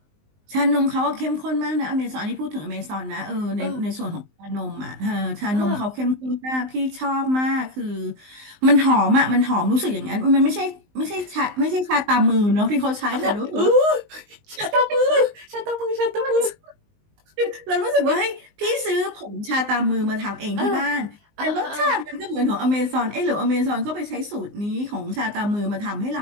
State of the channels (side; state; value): left; late; 19 ms